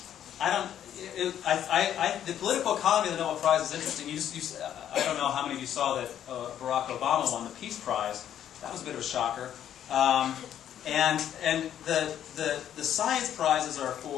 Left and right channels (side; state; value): right; quieter; 10.3 dB